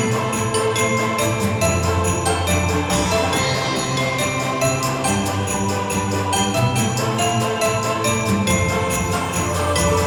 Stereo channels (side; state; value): both; identical; correlation 1.00